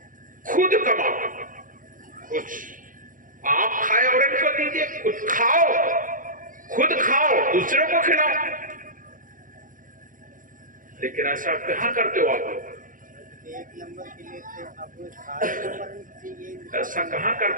खुद कमाओ, कुछ आप खाए और इनको दीजिए, खुद खाओ, दूसरों को खिलाओ। लेकिन ऐसा कहां करते हो आप लोग? 1 नंबर के लिए थे, अब 7 नंबर चाहिए। ऐसा कहां कर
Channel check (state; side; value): late; left; 0.39 ms